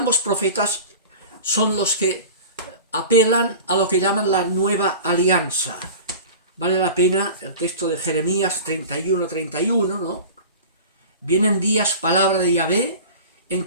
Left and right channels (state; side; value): inverted; both; correlation -0.36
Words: profetas son los que apelan a lo que llaman la nueva alianza. Vale la pena el texto de Jeremías 31:31, ¿no? Vienen días, palabra de Yahvé, en